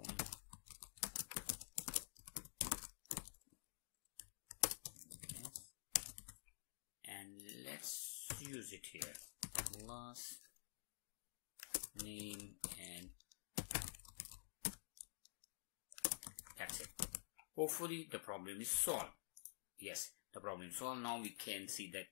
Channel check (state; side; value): silent; right; digital silence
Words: let's use it here, class name, and that's it. Hopefully the problem is solved. Yes, the problem is solved. Now we can see